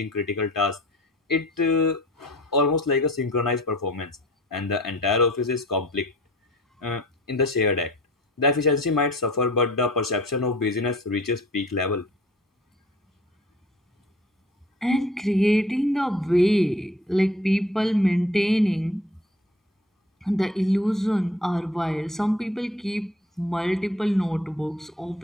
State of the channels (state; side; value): normal; both; correlation 0.48